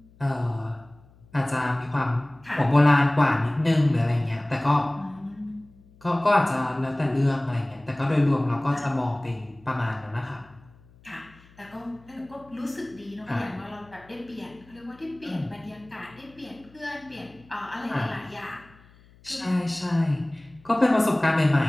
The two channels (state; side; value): noise; left; hum, 27 dB below the sound